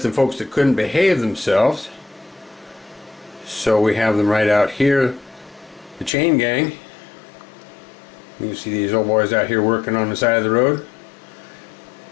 folks that couldn't behave themselves, so we have them right out here. The chain gang. You can see these old boys out here working on the side of the road,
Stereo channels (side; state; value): right; drops out; at 6.1 s